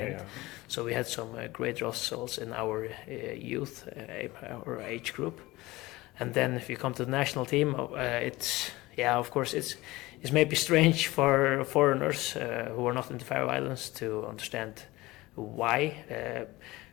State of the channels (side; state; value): right; quieter; 19.8 dB